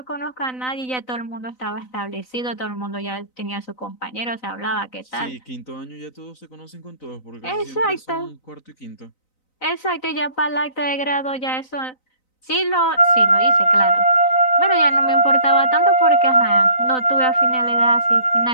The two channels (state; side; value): late; right; 3.9 ms